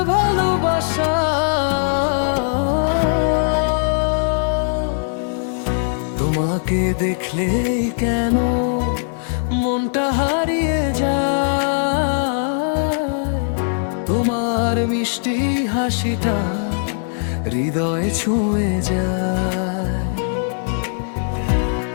ভালোবাসা, তোমাকে দেখলেই কেন মনটা হারিয়ে যায়। তোমার মিষ্টি হাসিটা হৃদয়ে ছুঁয়ে যায়।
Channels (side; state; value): right; silent; 66 dB below the other